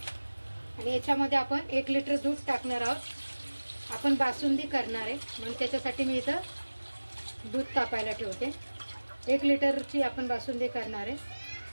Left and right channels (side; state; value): both; inverted; correlation -1.00